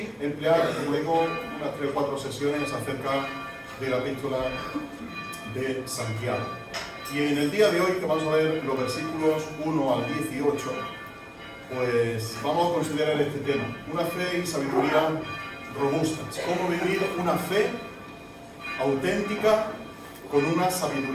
emplear, como digo, unas 3 o 4 sesiones acerca de la Epístola de Santiago. Y en el día de hoy, que vamos a ver los versículos 1 al 18, pues vamos a considerar este tema: una fe y sabiduría robustas. Cómo vivir una fe auténtica con una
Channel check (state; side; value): identical; both; correlation 1.00